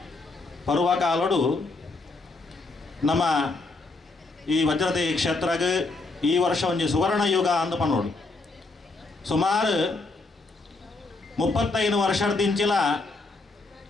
ಪರ್ವಕಾಲಡು ನಮ್ಮ ಈ ವಜ್ರದೇಹಿ ಕ್ಷೇತ್ರಗೆ ಈ ವರ್ಷ ಒಂದು ಸುವರ್ಣ ಯುಗ ಅಂದ ಪನ್ನೋಡು ಸುಮಾರು 35 ವರ್ಷದಿಂಚಿಲ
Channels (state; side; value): quieter; right; 3.5 dB